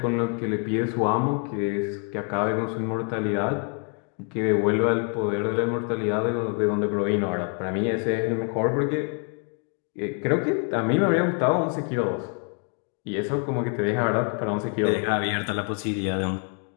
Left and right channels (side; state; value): right; quieter; 39.0 dB